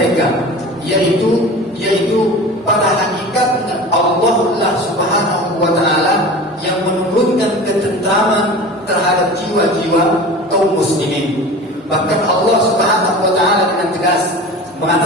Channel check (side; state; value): both; normal; correlation 0.36